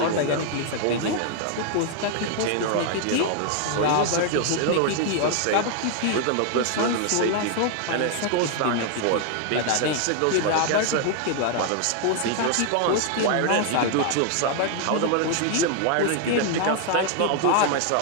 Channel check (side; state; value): both; different; correlation 0.00